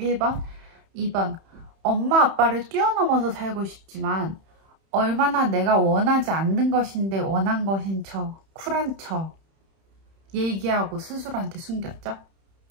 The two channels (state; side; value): late; left; 31 ms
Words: 2번 엄마 아빠를 뛰어넘어서 살고 싶지만 얼마나 내가 원하지 않는 것인데 원한 것인 척 쿨한 척 얘기하고 스스로한테 숨겼죠.